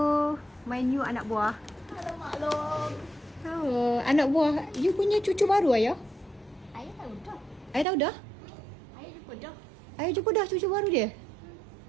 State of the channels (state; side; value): drops out; left; at 7.9 s